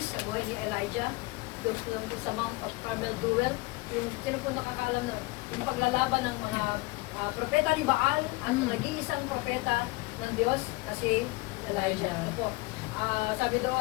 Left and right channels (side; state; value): right; quieter; 23.5 dB